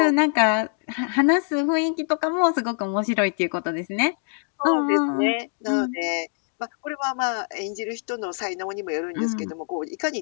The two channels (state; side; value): silent; right; 62 dB below the other